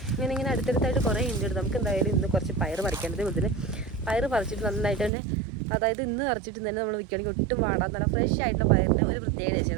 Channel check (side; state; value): left; drops out; at 5.1 s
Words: ഇങ്ങനെ അടുത്തടുത്തായിട്ട് കുറേ ഉണ്ട്. നമുക്ക് എന്തായാലും ഇന്ന് കുറച്ച് പയർ പറിക്കേണ്ടത്. അതുപോലെ പയർ പറിച്ചിട്ട് നന്നായിട്ട് തന്നെ, അതായത് ഇന്ന് പറിച്ചിട്ട് തന്നെ നമ്മൾ വിൽക്കുകയാണെങ്കിൽ ഒട്ടും വാടാൻ നല്ല ഫ്രഷ് ആയിട്ടുള്ള പയറിന് ഒരു പ്രത്യേകത